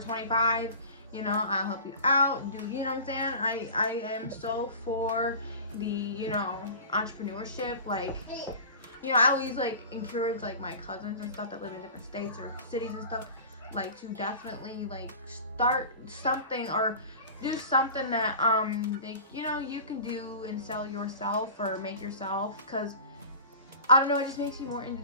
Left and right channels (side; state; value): both; inverted; correlation -0.38